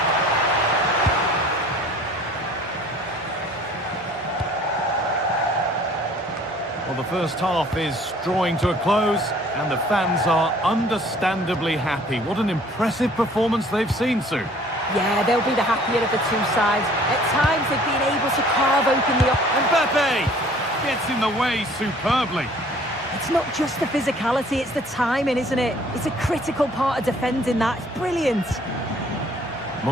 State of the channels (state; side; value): normal; both; correlation 0.54